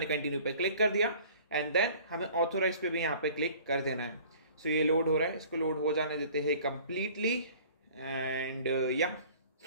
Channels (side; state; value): both; inverted; correlation -0.49